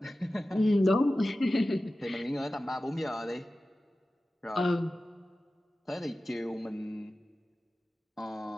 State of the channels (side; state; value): both; normal; correlation 0.95